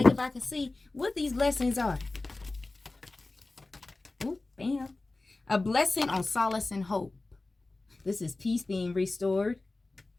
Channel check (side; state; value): right; quieter; 3.2 dB